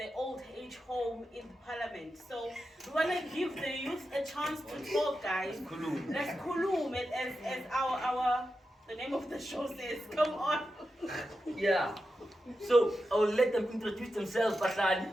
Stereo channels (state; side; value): normal; both; correlation 0.90